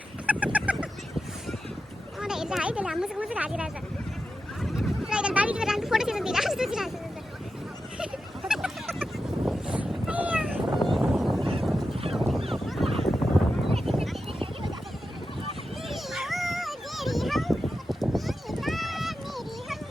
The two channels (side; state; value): both; normal; correlation 0.90